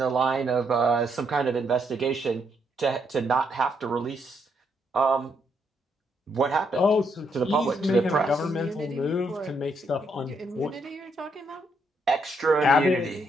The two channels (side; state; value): both; normal; correlation 0.75